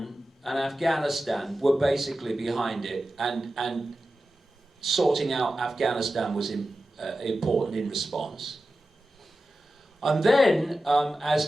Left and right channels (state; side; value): normal; both; correlation 0.93